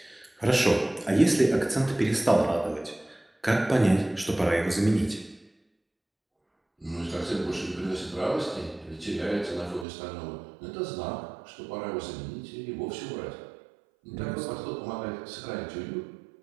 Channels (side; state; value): left; drops out; at 9.9 s